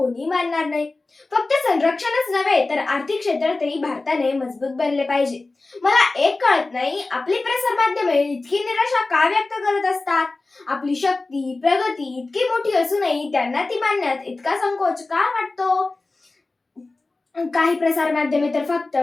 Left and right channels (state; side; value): quieter; right; 3.4 dB